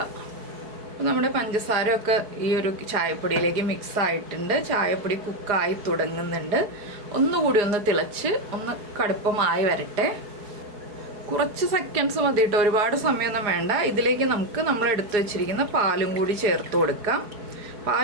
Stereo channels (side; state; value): left; late; 4.8 ms